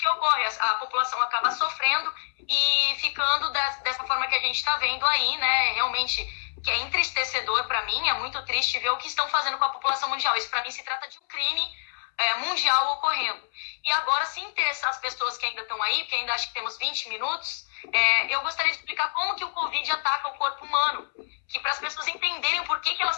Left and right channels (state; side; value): silent; right; 60 dB below the other